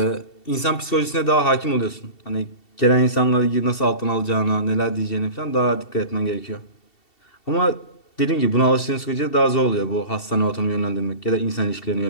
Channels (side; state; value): right; late; 2.7 ms